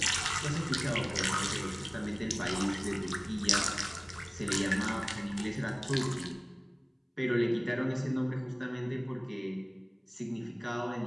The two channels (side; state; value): both; identical; correlation 1.00